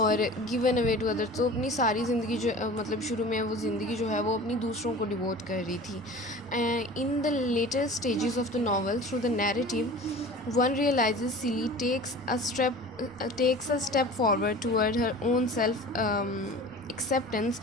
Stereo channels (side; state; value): right; noise; rumble, 25 dB below the sound